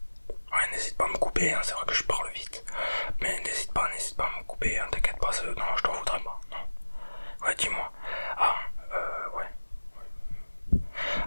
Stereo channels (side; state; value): both; inverted; correlation -1.00